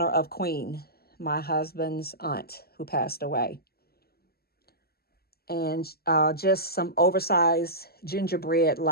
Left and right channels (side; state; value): right; late; 0.45 ms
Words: of Queen, my husband's aunt who passed away. And just some oversized